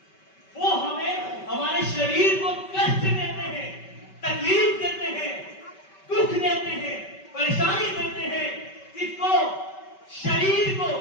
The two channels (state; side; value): late; right; 5.2 ms